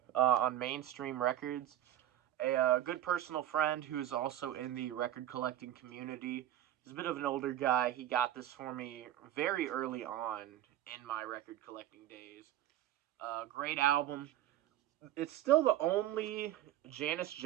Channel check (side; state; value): left; quieter; 12.6 dB